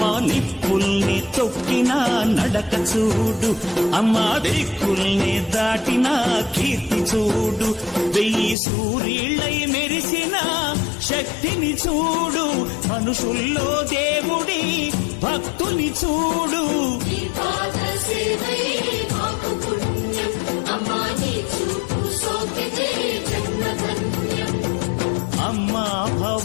నిప్పుల్ని తొక్కిన నడక చూడు, అమ్మా దిక్కుల్ని దాటిన కీర్తి చూడు, 1000 సూర్యుళ్ళై మెరిసిన శక్తిని చూడు, మనుషుల్లో దేవుడి భక్తుని చూడు. అమ్మా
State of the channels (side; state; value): right; drops out; at 8.6 s